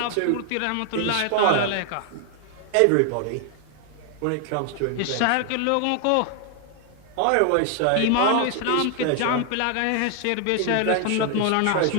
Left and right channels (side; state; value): both; different; correlation 0.00